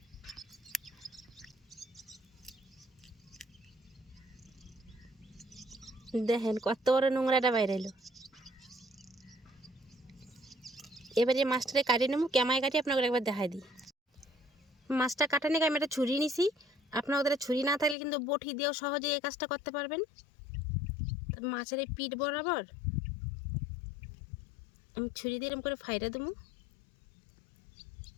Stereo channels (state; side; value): drops out; right; at 17.9 s